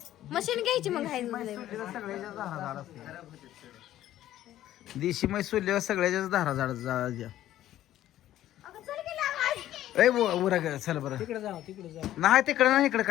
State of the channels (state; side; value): quieter; right; 13.2 dB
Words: मशीन घ्यायची मग आहे सगळ्याच्या धारा झाड असते. देशी म्हैस सोडल्यावर सगळ्याच्याच धारा झाड द्या. ए उरा ग चल बरं. तिकडे जाऊ नाही तिकडे नाही इकडे